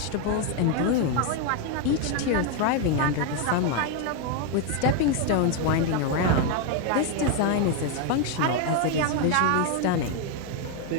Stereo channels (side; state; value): both; different; correlation 0.01